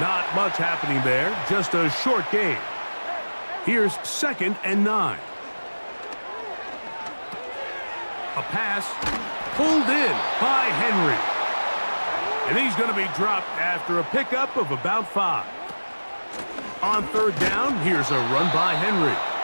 Not much happening there, just a short gain. Here's 2nd and 9. A pass pulled in by Henry. And he's going to be dropped after a pickup of about 5. On 3rd down, here's a run by Henry.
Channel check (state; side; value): inverted; both; correlation -1.00